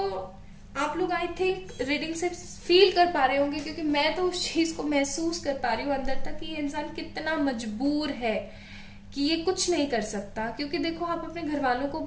आप लोग आई थिंक रीडिंग से फील कर पा रहे होंगे, क्योंकि मैं तो उस चीज को महसूस कर पा रही हूँ अंदर तक कि ये इंसान कितना मजबूर है कि ये कुछ नहीं कर सकता। क्योंकि देखो, आप अपने घर वालों को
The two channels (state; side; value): identical; both; correlation 1.00